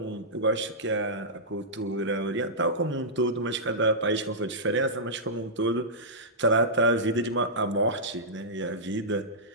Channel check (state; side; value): normal; both; correlation -0.14